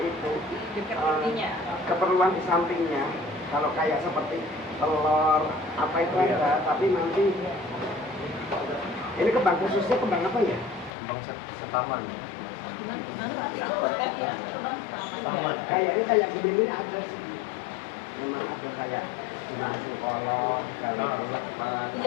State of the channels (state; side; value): drops out; right; at 10.9 s